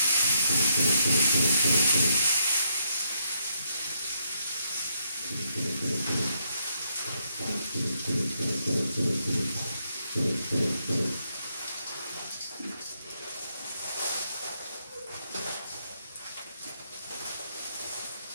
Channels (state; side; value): inverted; both; correlation -0.76